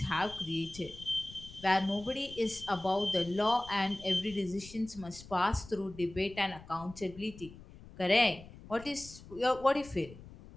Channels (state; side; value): noise; left; rumble, 18 dB below the sound